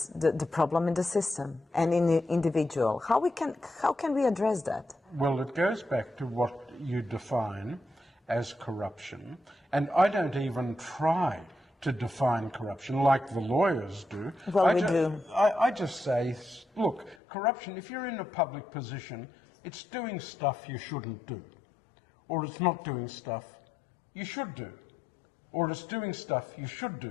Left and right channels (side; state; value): right; drops out; at 17.2 s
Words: the problem in the system and in the individual. How can we address that? Well, it goes back to what you define as corruption, and I don't even try to define corruption like the lawyers do. Well, we do. I just say, look, corruption, if you're in a public position, it's doing stuff you shouldn't do, or it's not doing stuff you should do, or it's doing stuff you should